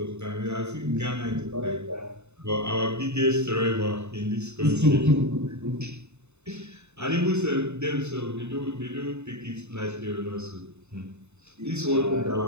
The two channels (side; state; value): left; late; 0.82 ms